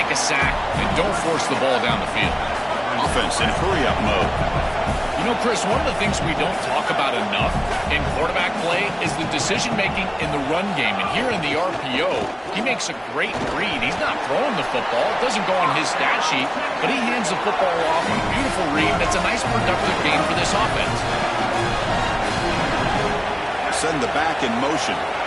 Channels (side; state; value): both; identical; correlation 1.00